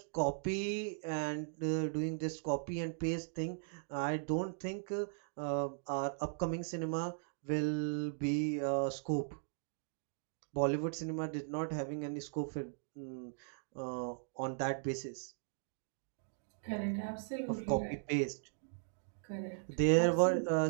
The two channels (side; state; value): left; silent; digital silence